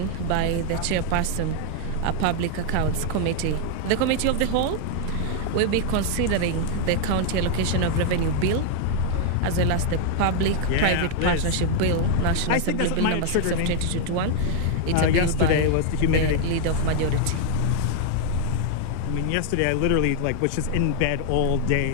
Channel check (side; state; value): both; different; correlation 0.00